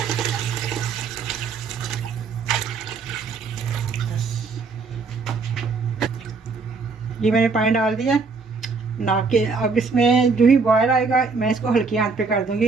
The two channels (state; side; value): quieter; left; 4.6 dB